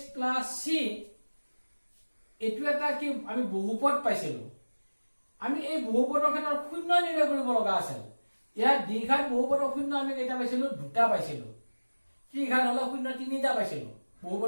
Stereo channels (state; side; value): inverted; both; correlation -1.00